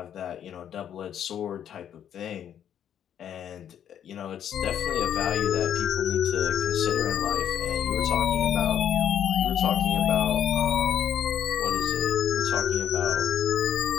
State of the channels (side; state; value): right; quieter; 9.5 dB